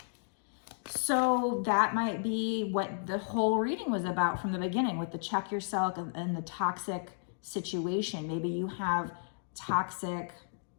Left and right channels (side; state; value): right; silent; digital silence